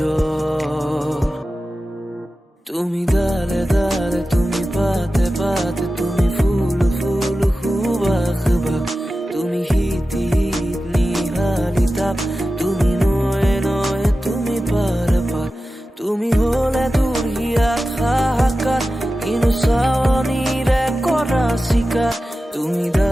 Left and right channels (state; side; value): normal; both; correlation 0.94